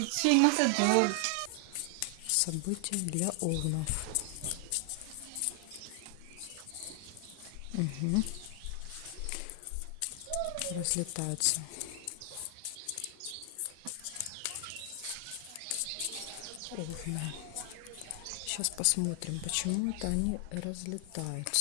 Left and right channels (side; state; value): both; different; correlation 0.00